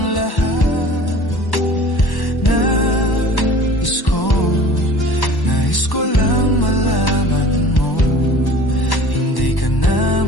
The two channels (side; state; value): right; late; 1.1 ms